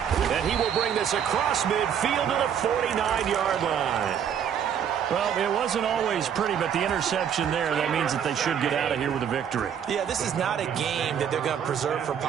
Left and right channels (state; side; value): quieter; left; 8.4 dB